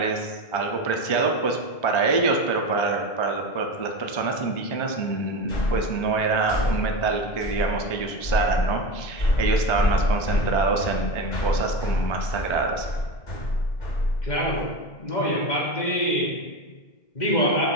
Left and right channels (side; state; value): right; late; 1.3 ms